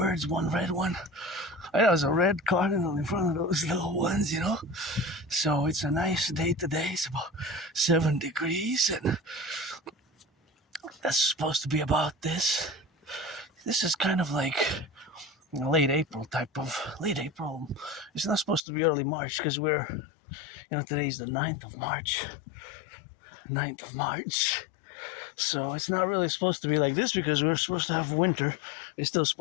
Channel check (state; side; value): drops out; right; at 18.6 s